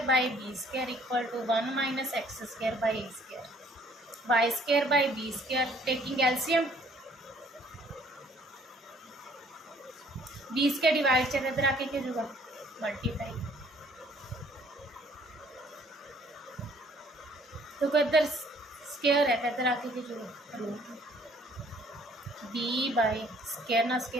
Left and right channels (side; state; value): both; normal; correlation 0.59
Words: by b square equal to 1 minus x square by a square, y square by b square taking LCM, b square divide से इधर आके क्या होगा मल्टीप्लाई। तो इधर स्केयर है तो इधर आके क्या होगा रूट, बी बाई स्केयर ना